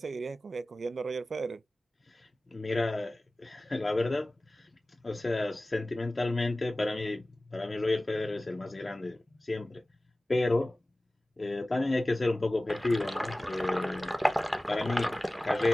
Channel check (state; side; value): normal; both; correlation 0.97